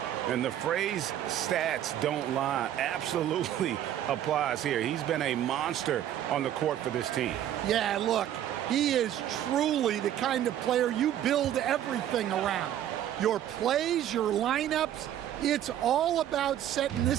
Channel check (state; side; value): quieter; left; 11.3 dB